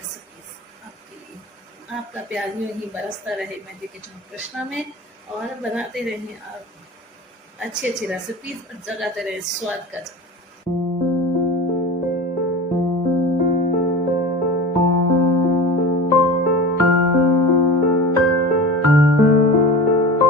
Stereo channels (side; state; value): both; normal; correlation 0.32